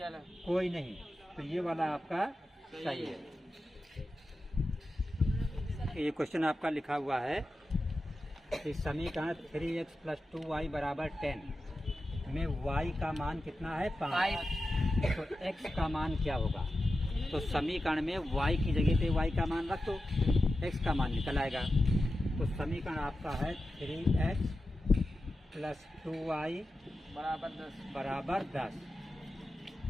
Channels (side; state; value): both; normal; correlation 0.92